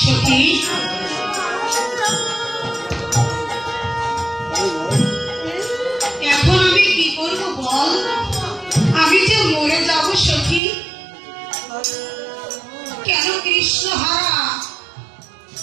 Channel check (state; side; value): drops out; left; at 10.6 s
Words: সখী এখন আমি কি করবো বল, আমি যে মরে যাব সখী। কেন কৃষ্ণ